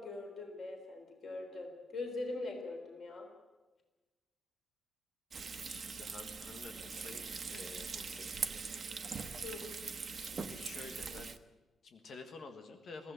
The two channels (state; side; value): normal; both; correlation 0.80